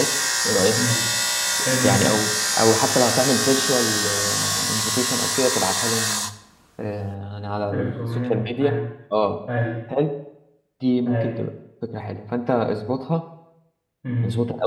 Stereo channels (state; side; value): identical; both; correlation 1.00